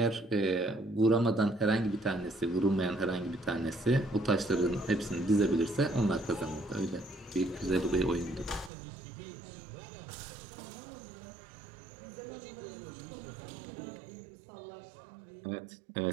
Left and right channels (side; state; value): left; drops out; at 8.7 s